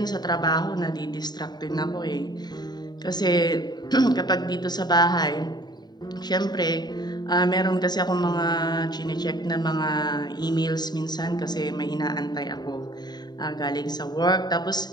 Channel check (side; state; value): right; late; 0.20 ms